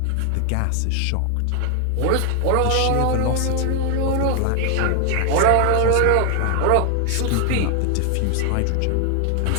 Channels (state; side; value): different; both; correlation 0.00